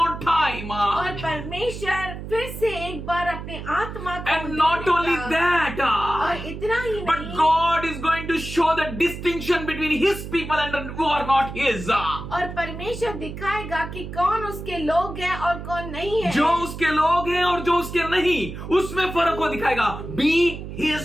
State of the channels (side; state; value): right; noise; hum, 9 dB below the sound